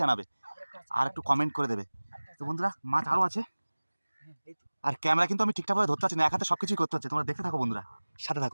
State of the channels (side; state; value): both; inverted; correlation -1.00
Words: জানাবে, আর একটু কমেন্ট করে দেবে। তো বন্ধুরা মাছ আরও আছে, হ্যাঁ, এই তো। আর ক্যামেরা কিন্তু আমি ঠিকঠাকভাবে ধরতে পারছি না, এক হাতে সব কিছুই করতে হচ্ছে। তোমরা দেখতে থাকো বন্ধুরা, সাথে